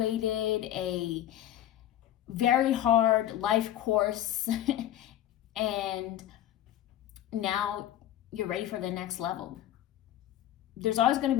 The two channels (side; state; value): right; quieter; 12.3 dB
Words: a very hard life course and now you're ready for the next level. There's always going to